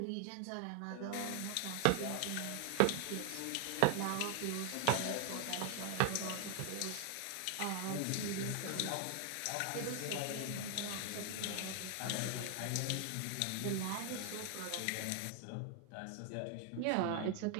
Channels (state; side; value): different; both; correlation 0.00